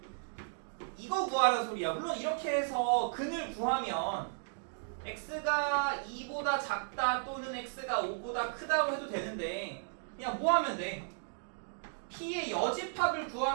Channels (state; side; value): silent; left; digital silence